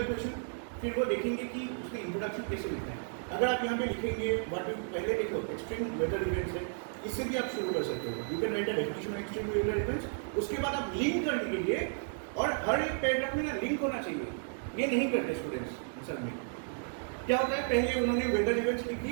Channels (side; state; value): left; silent; digital silence